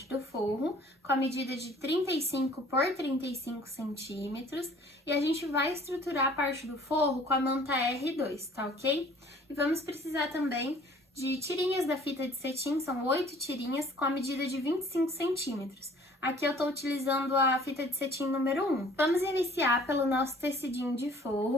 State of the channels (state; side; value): normal; both; correlation 0.53